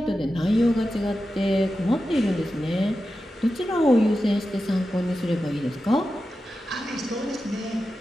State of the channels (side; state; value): both; normal; correlation 0.92